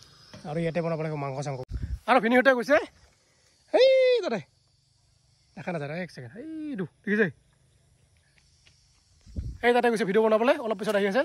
আৰু ইয়াতে বনাব লাগিব মাংস চাংস আৰু ভিনিহঁতে গৈছে সেই তাতে দেখা নাযায় এক ছেকেণ্ড এইটো দেখিছে এই তাতে গৈছে ভিডিঅ' বনাবলৈ অলপ পিছত আহি আছে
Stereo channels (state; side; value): identical; both; correlation 1.00